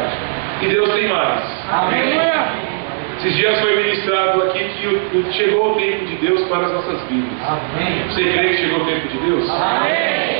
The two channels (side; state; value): left; silent; digital silence